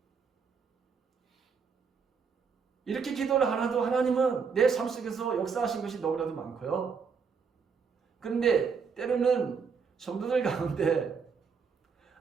이렇게 기도를 하나도 하나님은 내 삶 속에서 역사하신 것이 너무나도 많고요. 그런데 때로는 성도들 가운데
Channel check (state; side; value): quieter; left; 5.8 dB